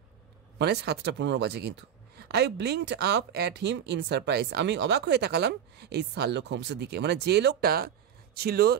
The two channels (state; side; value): quieter; left; 9.1 dB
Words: মানে 7:15 বাজে কিন্তু। I blinked up at him in surprise, আমি অবাক হয়ে তাকালাম এই শার্লক হোমসের দিকে, মানে যে লোকটা ছিল